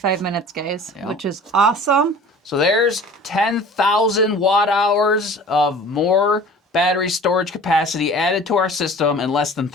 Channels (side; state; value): both; normal; correlation 0.43